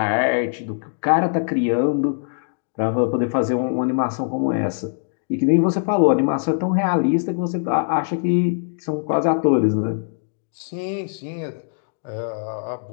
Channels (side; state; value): right; silent; digital silence